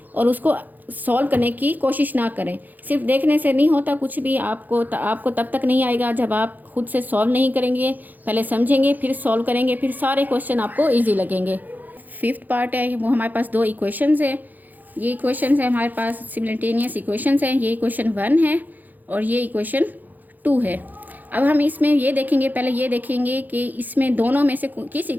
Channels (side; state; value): left; late; 0.084 ms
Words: और उसको सॉल्व करने की कोशिश ना करें। सिर्फ देखने से नहीं होता कुछ भी, आपको तब तक नहीं आएगा जब आप खुद से सॉल्व नहीं करेंगे, पहले समझेंगे फिर सॉल्व करेंगे, फिर सारे क्वेश्चन आपको ईजी लगेंगे। 5th पार्ट है वो हमारे पास 2 इक्वेशंस है। ये इक्वेशंस है हमारे पास सिमिल्टेनियस इक्वेशंस हैं। ये इक्वेशन 1 है और ये इक्वेशन 2 है। अब हम इसमें ये देखेंगे, पहले ये देखेंगे कि इसमें दोनों में से किस